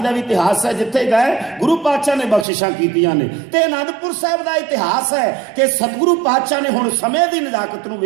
का भी इतिहास है, जिथे गए गुरु पातशाह ने बख्शिशां कीतियां ने। ते आनंदपुर साहिब का इतिहास है कि सतगुरु पातशाह ने हुण समय की नजाकत नूं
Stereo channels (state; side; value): drops out; left; at 2.5 s